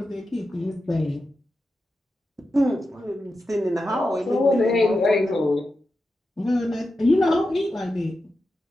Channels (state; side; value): normal; both; correlation 0.90